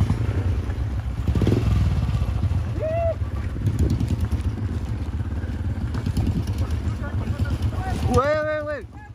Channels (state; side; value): identical; both; correlation 1.00